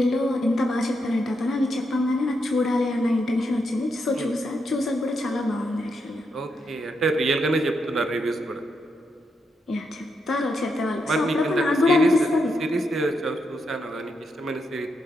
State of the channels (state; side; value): normal; both; correlation 0.82